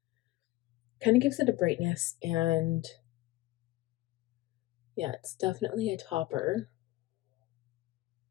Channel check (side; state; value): right; quieter; 17.7 dB